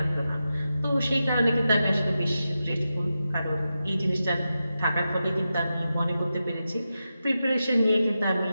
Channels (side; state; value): both; inverted; correlation -0.90